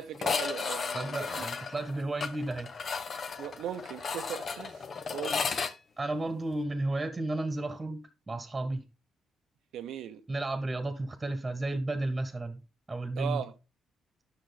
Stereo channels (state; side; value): normal; both; correlation 0.85